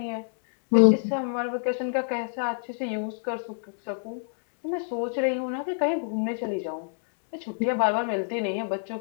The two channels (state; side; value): silent; right; digital silence